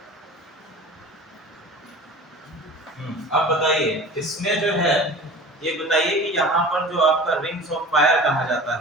अब बताइए इसमें जो है, ये बताइए कि यहाँ पर जो आपका रिंग्स ऑफ फायर कहा जाता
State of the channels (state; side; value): normal; both; correlation 0.40